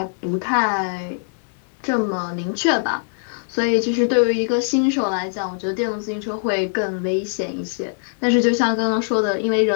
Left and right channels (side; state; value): right; silent; 63 dB below the other